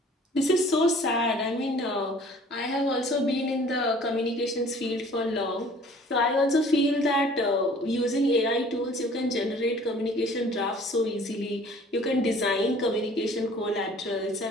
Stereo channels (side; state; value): both; normal; correlation 0.52